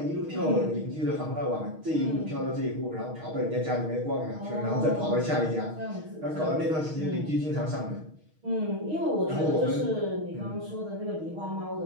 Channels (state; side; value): late; left; 6.4 ms